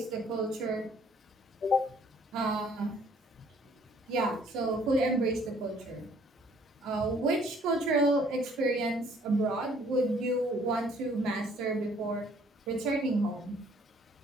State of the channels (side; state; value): both; normal; correlation 0.60